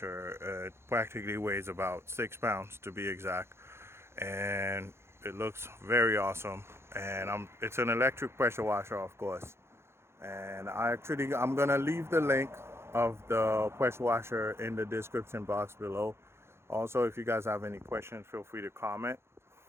It practically weighs about 6 pounds to be exact, and it looks very awesome. And it's an electric pressure washer, of course. And I'm gonna leave the link of the pressure washer in the description box below. Also, if you guys have any questions, feel free to comment,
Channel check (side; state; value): left; late; 0.12 ms